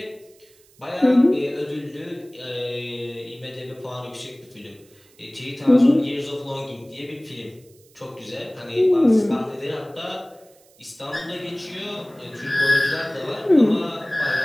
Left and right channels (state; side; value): noise; right; hiss, 29 dB below the sound